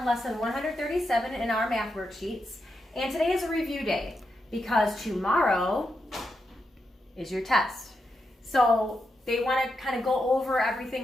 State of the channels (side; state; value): both; normal; correlation 0.85